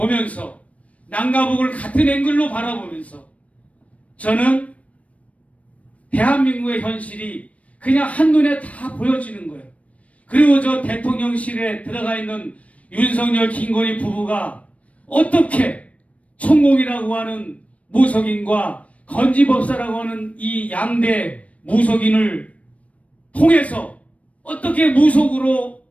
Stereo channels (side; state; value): right; late; 0.066 ms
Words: 남과 북을 같은 앵글로 바라보면서 저는 대한민국의 현실이 그냥 한눈에 다 보여지는 거예요. 그리고 저 대통령실에 들어가 있는 윤석열, 김건희 부부가 어떻게 천공이라고 하는 무속인과 건지법사라고 하는 이 양대 무속인을 통해서 어떻게 무속으로